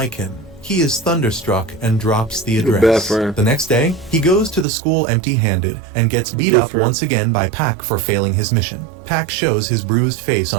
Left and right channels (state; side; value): drops out; left; at 4.7 s